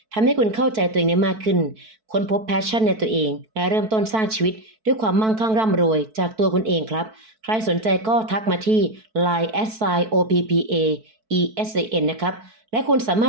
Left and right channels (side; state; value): left; late; 4.6 ms